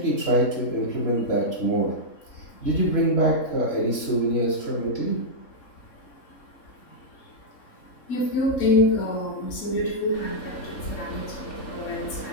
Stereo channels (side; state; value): right; late; 3.6 ms